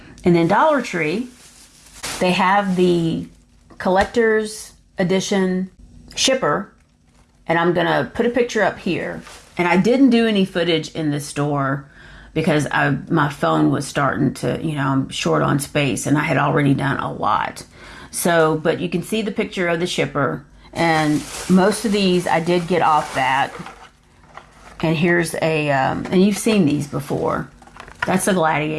And then Dollar Tree, they have the collector's edition shipper, and I'm going to put a picture up here. And I didn't do any footage in this store because my phone was starting to, I'm short on space, and I had already done a lot. So, but you can see the picture of the shipper. And most of these I did get off that. And here's and you've seen these before. That's a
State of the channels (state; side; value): identical; both; correlation 1.00